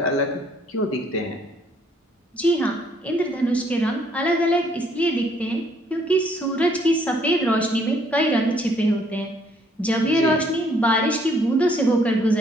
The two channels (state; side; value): normal; both; correlation 0.65